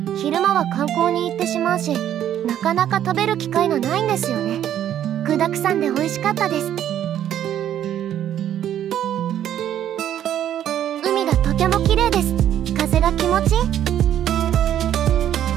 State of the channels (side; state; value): left; quieter; 10.8 dB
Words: 昼間は観光に行ってしまうし、なかなか食べる機会がないんですよね。具だくさんで美味しかったです。海がとても綺麗です。風が気持ちいい。